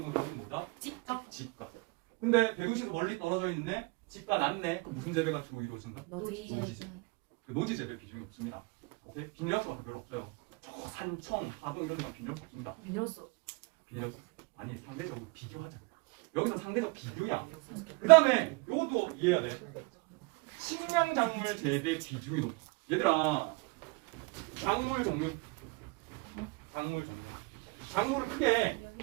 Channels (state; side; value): quieter; left; 28.1 dB